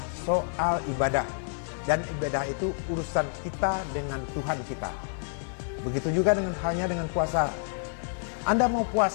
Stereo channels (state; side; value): silent; right; digital silence